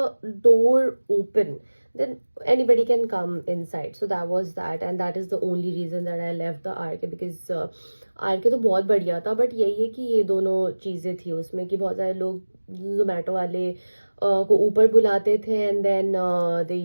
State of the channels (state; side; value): inverted; both; correlation -1.00